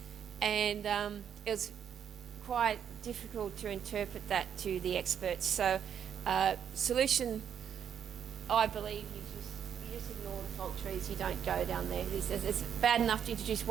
and it was quite difficult to interpret that to the experts. So solution, I believe, you just ignore the fault trees. You don't go down there. It's bad enough to introduce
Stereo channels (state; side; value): quieter; left; 8.5 dB